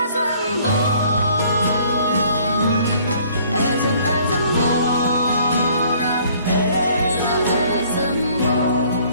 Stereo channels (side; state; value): both; inverted; correlation -0.58